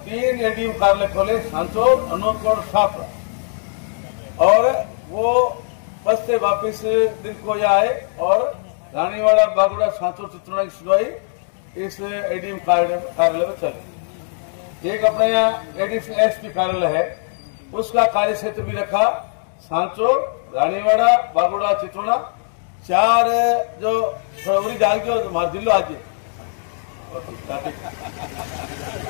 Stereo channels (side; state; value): right; silent; digital silence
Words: 3 एडीएम कार्यालय खोले, सांचौर, अनूपगढ़, शाहपुरा, और वो बस से वापिस दिन को आए और रानीवाड़ा, बागोड़ा, सांचौर, चित्रोड़ा की सुनवाई इस एडीएम कार्यालय में चली। एक अपने यहाँ एडीएम एसपी कार्यालय है, उसका कार्य क्षेत्र भी रखा, सांचौर, रानीवाड़ा, बागोड़ा, चित्रोड़ा, 4 जो फरवरी डाल के हमारे जिलो आज